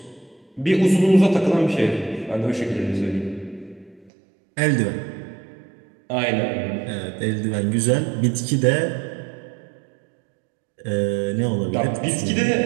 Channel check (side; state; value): left; drops out; at 4.1 s